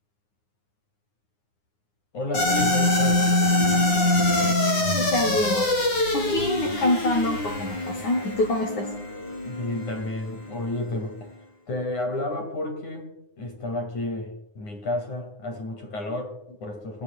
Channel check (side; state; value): right; late; 9.6 ms